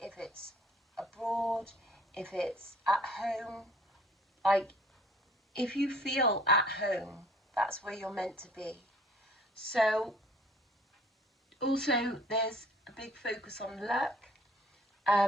if it's abroad, if it's at home, like if you feel at home, that's where you're meant to be. So also there's a big focus on luck,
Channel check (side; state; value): both; normal; correlation 0.55